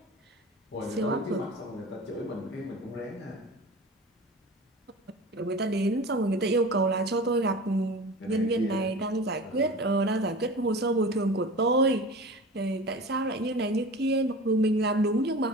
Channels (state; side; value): normal; both; correlation 0.35